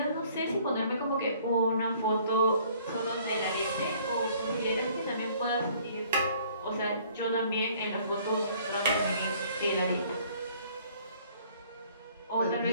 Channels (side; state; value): both; inverted; correlation -0.58